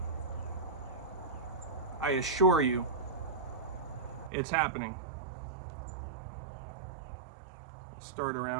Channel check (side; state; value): left; drops out; at 4.3 s